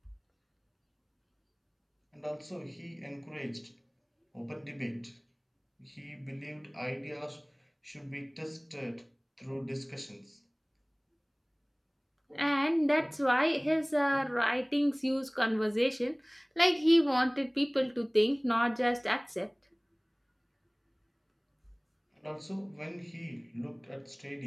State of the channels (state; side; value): identical; both; correlation 1.00